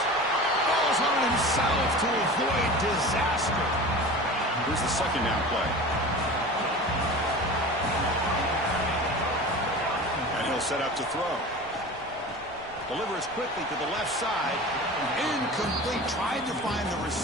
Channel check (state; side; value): noise; right; rumble, 22 dB below the sound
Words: Ball's on himself to avoid disaster. Here's the 2nd down play. And he'll set up to throw. Delivers quickly to the left side. Incomplete. Tried to find the